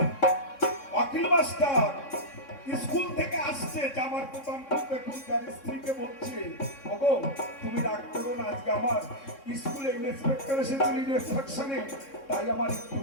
অখিল মাস্টার স্কুল থেকে আসছে, জামার প্রথম তার স্ত্রীকে বলছে ওগো তুমি রাগ করো না, আজকে আমার স্কুলে ইন্সপেক্টর এসেছিল ইন্সপেকশনে, তাই আমার একটু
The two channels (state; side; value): late; right; 3.6 ms